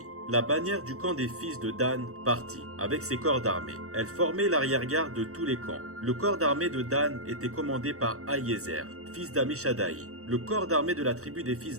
La bannière du camp des fils de Dan partit, avec ses corps d'armée. Elle formait l'arrière-garde de tous les camps. Le corps d'armée de Dan était commandé par Aïézer, fils d'Amishadaï. Le corps d'armée de la tribu des fils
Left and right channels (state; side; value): late; left; 0.64 ms